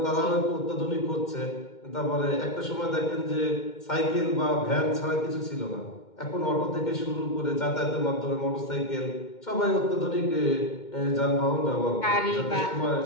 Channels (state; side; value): late; right; 2.1 ms